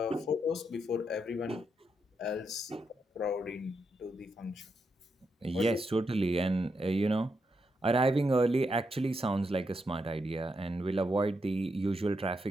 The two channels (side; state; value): both; normal; correlation 0.82